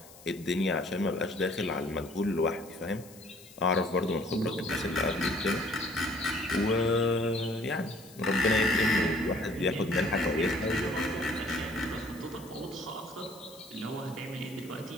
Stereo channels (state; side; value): noise; left; hiss, 21 dB below the sound